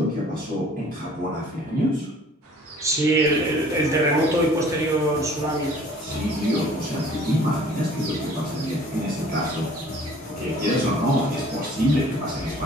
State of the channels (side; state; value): both; normal; correlation 0.52